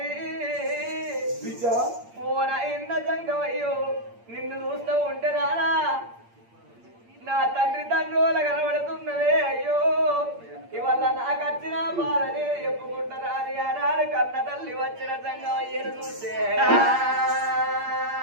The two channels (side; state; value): left; late; 8.6 ms